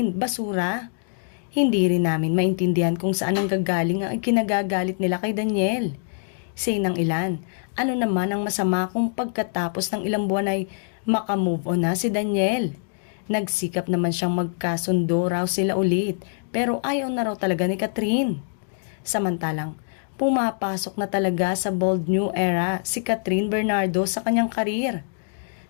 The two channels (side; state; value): right; silent; digital silence